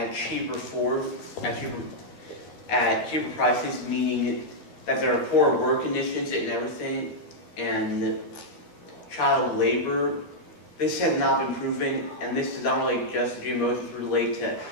cheaper prices, meaning that there are poor work conditions and everything, and child labor. This has not been proven, and this is not really just GMOs, it's related to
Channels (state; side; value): late; right; 13 ms